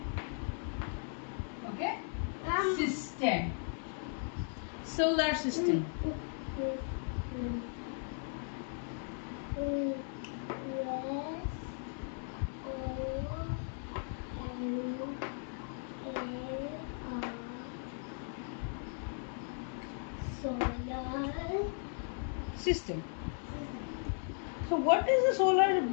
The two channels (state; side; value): silent; right; 53 dB below the other